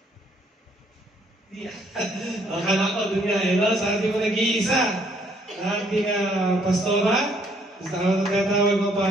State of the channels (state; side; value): normal; both; correlation 0.66